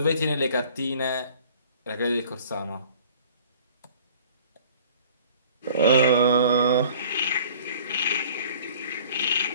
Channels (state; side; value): inverted; both; correlation -0.50